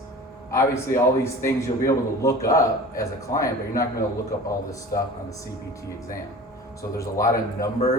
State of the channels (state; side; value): normal; both; correlation 0.40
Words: Obviously, all these things you'll be able to look up as a client, but you're not going to look up all this stuff on the CPT exam. So there's a lot of